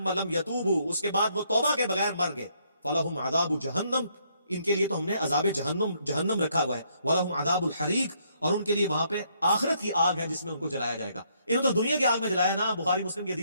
لم یتوبوا, اس کے بعد وہ توبہ کے بغیر مر گئے, فلہم عذاب جہنم, ان کے لیے تو ہم نے عذاب جہنم رکھا ہوا ہے, ولہم عذاب الحریق, اور ان کے لیے وہاں پہ آخرت کی آگ ہے جس میں ان کو جلایا جائے گا. انہوں تو دنیا کی آگ میں جلایا نا. بخاری مسلم کی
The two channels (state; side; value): inverted; both; correlation -0.71